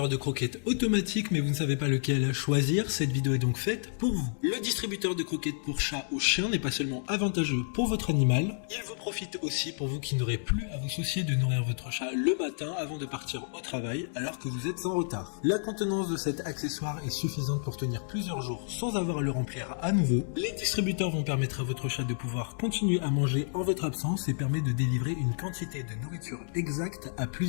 de croquettes automatique mais vous ne savez pas lequel choisir, cette vidéo est donc faite pour vous. Le distributeur de croquettes pour chat ou chien n'est pas seulement avantageux pour votre animal, il vous profite aussi pour vous qui n'aurez plus à vous soucier de nourrir votre chat le matin avant de partir au travail alors que vous êtes en retard. La contenance de cet accessoire est suffisante pour tenir plusieurs jours sans avoir à le remplir à nouveau. Les distributeurs vont permettre à votre chat de pouvoir continuer à manger en votre absence et permet de délivrer une quantité de nourriture exacte à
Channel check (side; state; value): right; silent; digital silence